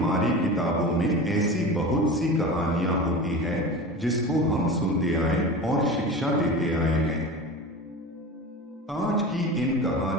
किताबों में ऐसी बहुत सी कहानियां होती हैं जिसको हम सुनते आए और शिक्षा देते आए हैं। आज की इन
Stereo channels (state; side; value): normal; both; correlation 0.31